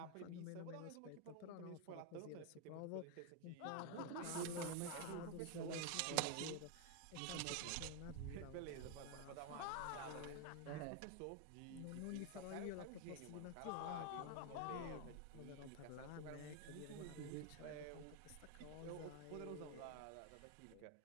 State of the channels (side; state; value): both; different; correlation 0.01